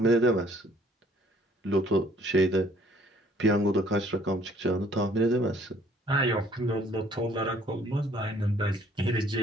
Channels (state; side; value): normal; both; correlation 0.60